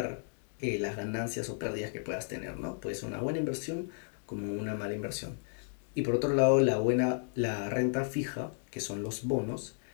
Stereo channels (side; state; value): right; silent; digital silence